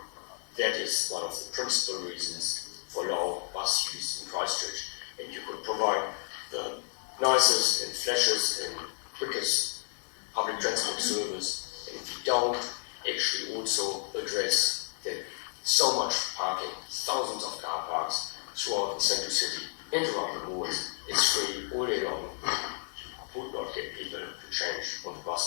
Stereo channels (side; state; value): right; silent; 57 dB below the other